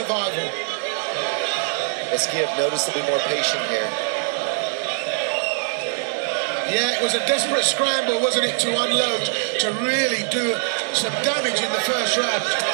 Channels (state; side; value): silent; left; 64 dB below the other